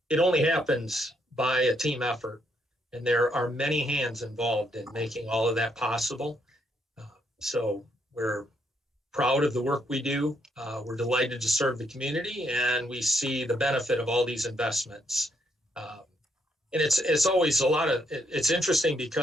it only happens by a team effort, and there are many hands involved in making all of that possible. So we're proud of the work we do. We're delighted to serve the community, and we see the benefit of all these investments. And it's always it's interesting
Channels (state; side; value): normal; both; correlation 0.75